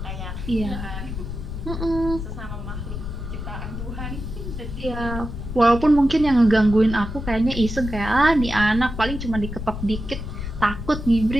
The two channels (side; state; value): left; noise; rumble, 7 dB below the sound